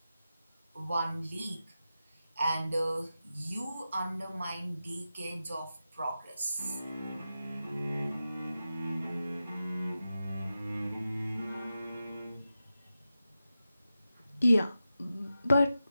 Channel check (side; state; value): both; inverted; correlation -0.91